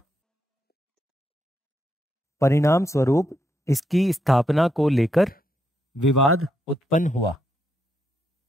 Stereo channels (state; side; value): normal; both; correlation 0.79